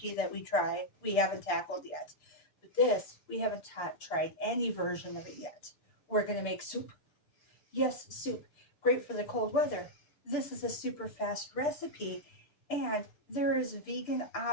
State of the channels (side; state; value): right; late; 6.8 ms